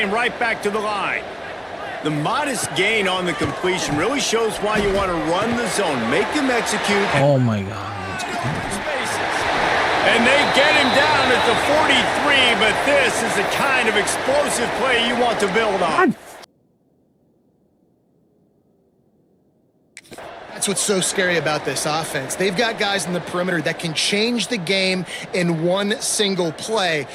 right back to the line. The modest gain on the completion really shows why you want to run the zone. Make them execute. Oh my God. And they get him down at the 43, but this is the kind of explosive play you want to build on. That's what's so scary about this offense. They've got guys in the perimeter that can change the game in one single play,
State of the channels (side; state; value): both; identical; correlation 1.00